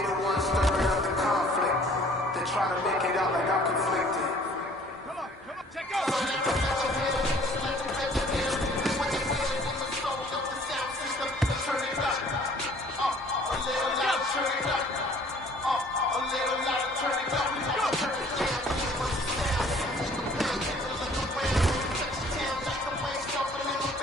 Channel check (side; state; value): both; normal; correlation 0.55